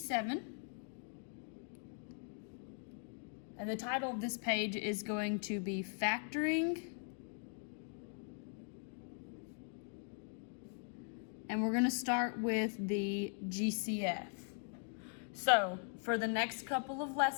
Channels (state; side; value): silent; right; 51 dB below the other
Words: And the title of this page is going to be Factoring. And we're going to start with the GCF. So for the next couple of